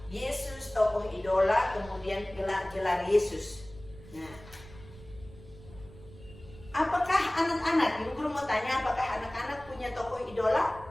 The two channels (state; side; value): noise; right; rumble, 19 dB below the sound